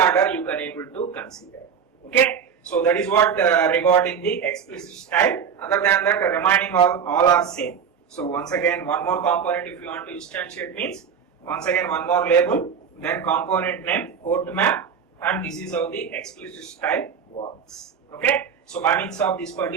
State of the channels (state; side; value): quieter; left; 7.1 dB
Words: you can able to consider. Okay, so that is what regarding the explicit style. Other than that, remaining all are same. So once again, one more component if you want to instantiate means, once again one more label, then component name, port map, and this is how the explicit style works. Okay, so by means of this